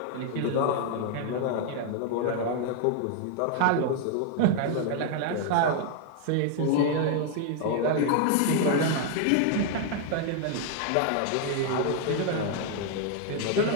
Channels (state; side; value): different; both; correlation 0.00